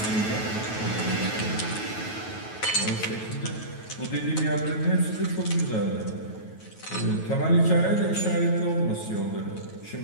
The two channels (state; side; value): late; right; 9.2 ms